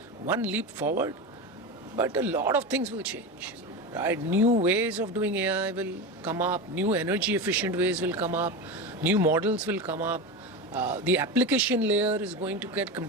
one leap forward, but a lot of things will change. Right? New ways of doing AI will come up, new energy efficient ways will come up, new models will come up. The application layer is going to get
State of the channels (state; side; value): normal; both; correlation 0.21